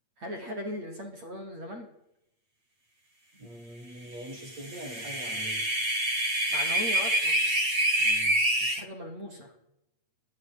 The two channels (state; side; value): late; left; 8.6 ms